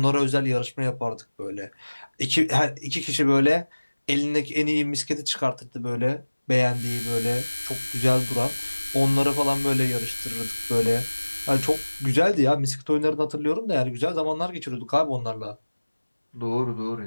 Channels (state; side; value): inverted; both; correlation -1.00